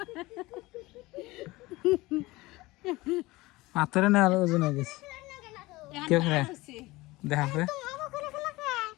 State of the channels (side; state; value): right; quieter; 20.5 dB